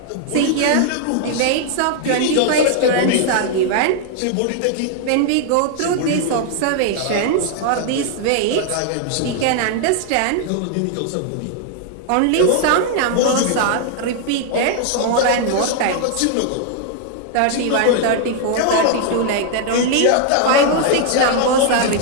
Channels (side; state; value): both; different; correlation 0.00